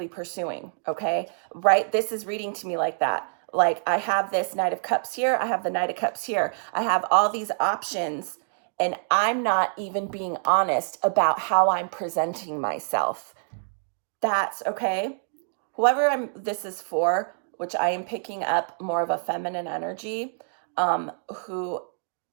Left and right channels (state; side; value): silent; left; digital silence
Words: pursuing, okay? Right? This is reading to me like that. Like I have this Knight of Cups here. I have the Knight of Cups here. I have all these options and I'm not even being honest about how I'm presenting myself. That's okay. Whoever this is for, which I am picking up more of a feminine energy, who,